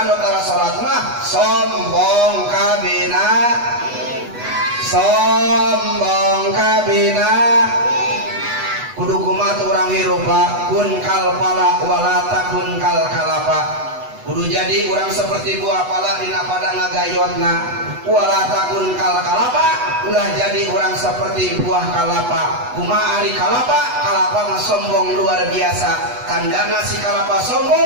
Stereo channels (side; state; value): left; late; 8.1 ms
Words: anu tara salat mah sombong kabina kudu kumaha urang hirup kun kal pala wala takun kal kalapa kudu jadi urang seperti buah pala dina pada ngagayotna wala takun kal kalapa ulah jadi urang seperti buah kalapa kumaha ari kalapa mah sombong luar biasa tandana si kalapa